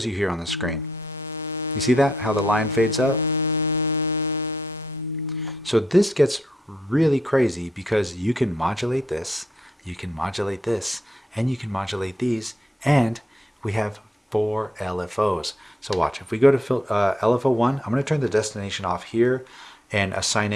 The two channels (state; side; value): normal; both; correlation 0.76